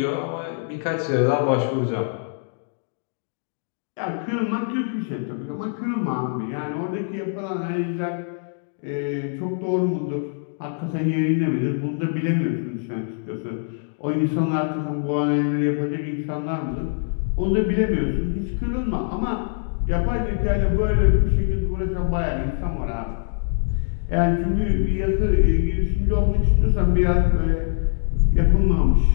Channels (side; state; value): right; silent; digital silence